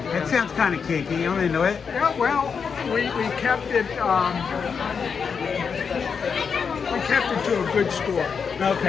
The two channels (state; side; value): quieter; right; 6.1 dB